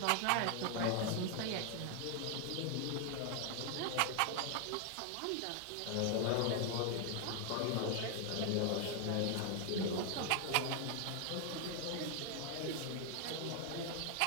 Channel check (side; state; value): both; different; correlation 0.00